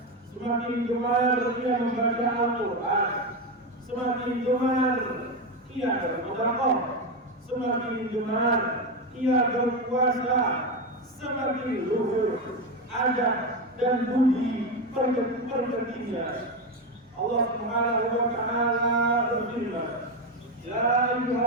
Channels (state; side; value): normal; both; correlation 0.13